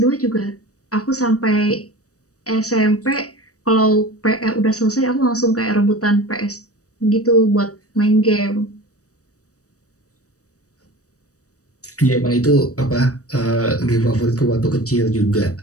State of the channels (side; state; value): right; late; 0.66 ms